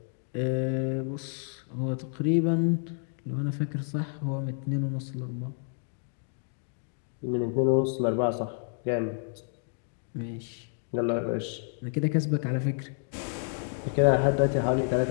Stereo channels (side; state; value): right; silent; 58 dB below the other